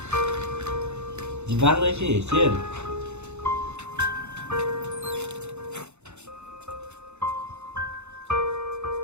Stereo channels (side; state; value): left; late; 0.82 ms